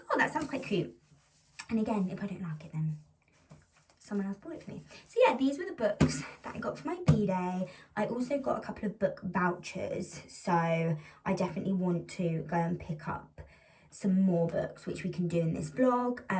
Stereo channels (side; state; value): both; identical; correlation 1.00